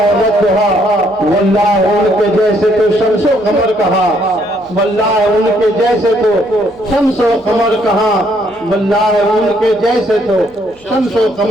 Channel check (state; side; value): noise; left; hum, 28 dB below the sound